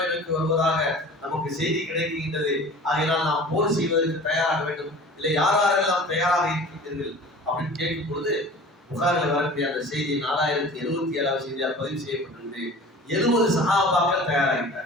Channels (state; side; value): normal; both; correlation 0.41